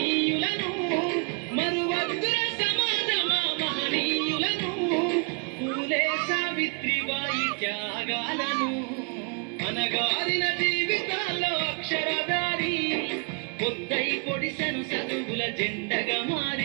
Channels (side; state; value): left; quieter; 36.7 dB